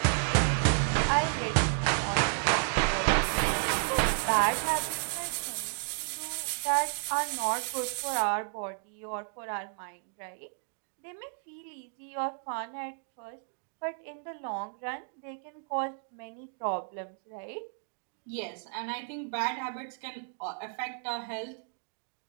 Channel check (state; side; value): silent; left; 56 dB below the other